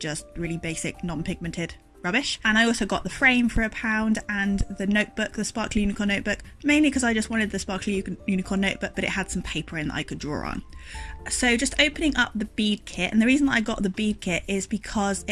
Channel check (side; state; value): both; identical; correlation 1.00